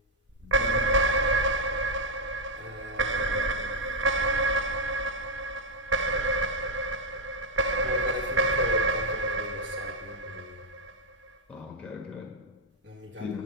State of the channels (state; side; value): normal; both; correlation 0.01